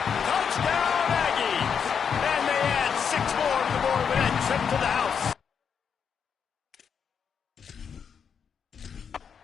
Touchdown, Aggies. And they add 6 more to the board with that trip to the house.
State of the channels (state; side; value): quieter; right; 7.0 dB